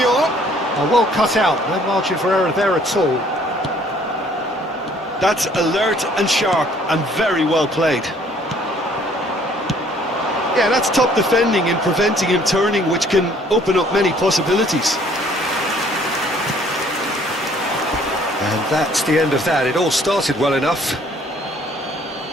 Oh, well cut out. No margin for error there at all. That's alert and sharp and very well played. Yeah, that's top defending and preventing him turning, which can open up many possibilities. And that's the end of that. It all started well enough.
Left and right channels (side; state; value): both; normal; correlation 0.59